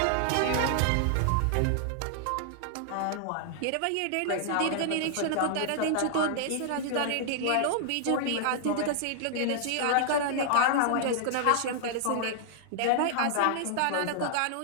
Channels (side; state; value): both; different; correlation -0.01